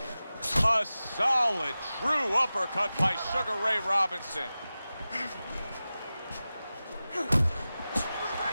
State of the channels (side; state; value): both; inverted; correlation -0.95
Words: A solid, true uppercut by Sugar Ray Robinson.